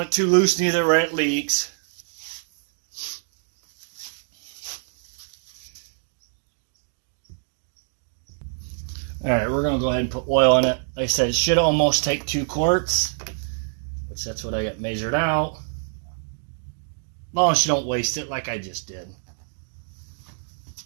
it too loose neither where it leaks. Alright, we're going to go ahead and put oil in it. Like I said, it should almost take 2 quarts, which that's what I got measured out. As long as you don't waste it like I just did.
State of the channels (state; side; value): silent; left; digital silence